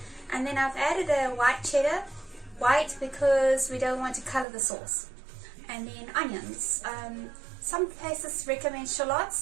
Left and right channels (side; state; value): left; drops out; at 4.5 s